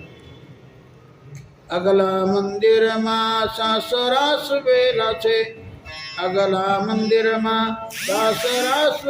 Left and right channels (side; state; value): both; identical; correlation 1.00